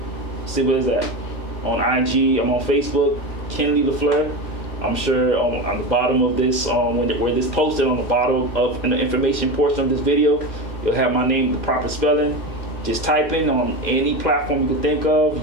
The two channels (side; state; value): right; late; 2.1 ms